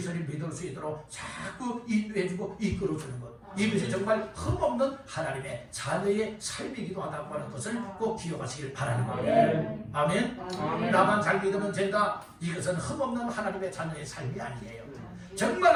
믿을 수 있도록 자꾸 인도해주고 이끌어주는 것, 이것이 정말 흠없는 하나님의 자녀의 삶이기도 하다고 하는 것을 꼭 기억하시길 바라는 거예요. 아멘. 나만 잘 믿으면 된다, 이것은 흠없는 하나님의 자녀의 삶이 아니에요. 정말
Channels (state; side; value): identical; both; correlation 1.00